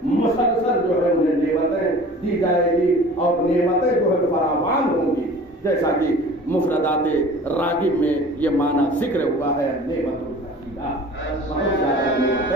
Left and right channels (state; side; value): normal; both; correlation 0.44